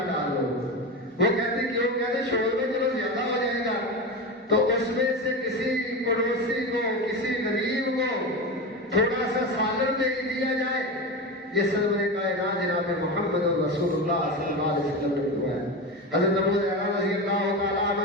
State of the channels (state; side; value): normal; both; correlation 0.21